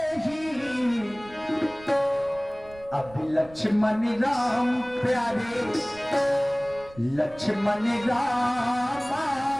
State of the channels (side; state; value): right; noise; rumble, 21 dB below the sound